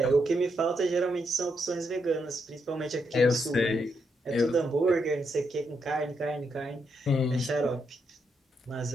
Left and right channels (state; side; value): normal; both; correlation 0.79